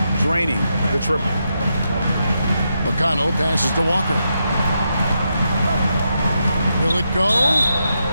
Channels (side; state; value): both; inverted; correlation -0.83